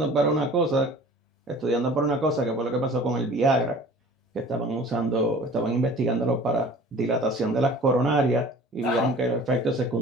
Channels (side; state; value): both; normal; correlation 0.45